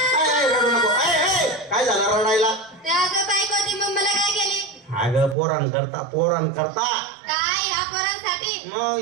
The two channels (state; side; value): drops out; left; at 5.4 s